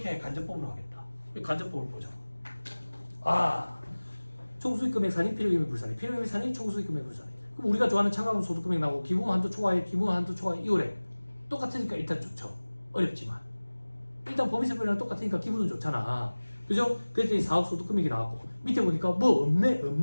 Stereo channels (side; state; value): both; inverted; correlation -1.00